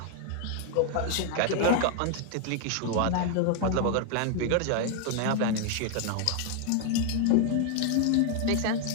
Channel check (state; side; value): different; both; correlation 0.00